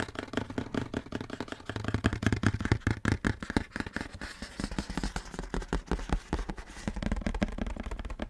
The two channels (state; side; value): identical; both; correlation 1.00